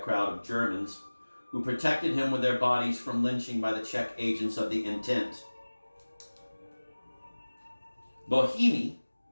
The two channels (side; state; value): both; inverted; correlation -1.00